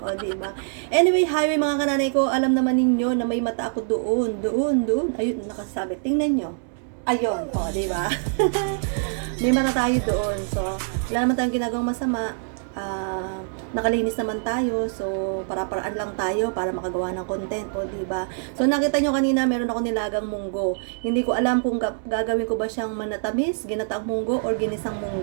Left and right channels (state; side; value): silent; left; digital silence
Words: diba? Anyway, highway mga kananay ko. Alam naman ninyo na may mata ako doon. Doon. Ayun, nakasabi. Tingnan nyo. Ayun. O, diba? May mata tayo doon. So, wala naman tayong ginagawang masama. Nakalinis naman tayo, so para-paraan lang tayo para makagawa ng content, o di ba? So nakita nyo kanina meron ako nilagang munggo. Hindi ko alam kung gagawin ko ba siyang manatamis, ginataang munggo or ginisang